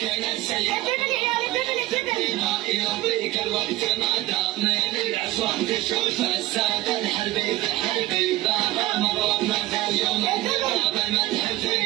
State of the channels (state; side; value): quieter; left; 17.2 dB